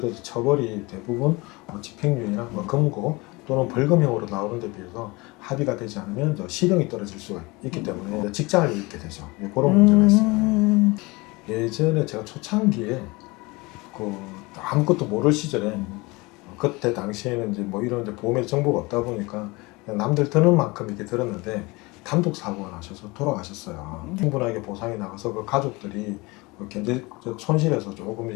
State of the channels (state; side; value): quieter; right; 24.3 dB